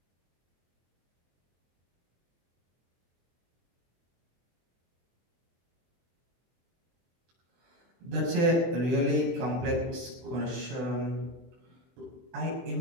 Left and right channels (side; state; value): left; late; 23 ms